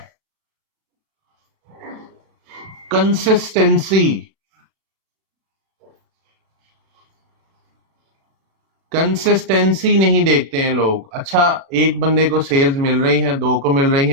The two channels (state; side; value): late; left; 36 ms